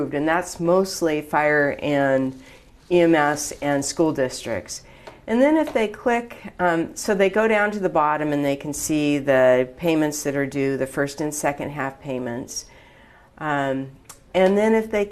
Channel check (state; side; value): identical; both; correlation 1.00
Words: and that's mostly fire and EMS and school districts. And then if they click, so they go down to the bottom and they can see the payments that are due, the first and second half payments. And then if they